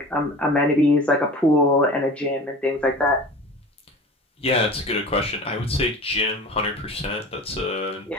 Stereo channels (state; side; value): normal; both; correlation 0.37